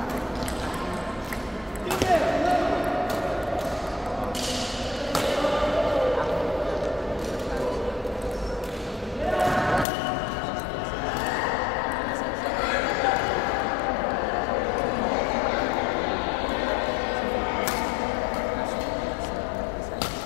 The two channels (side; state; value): right; drops out; at 9.9 s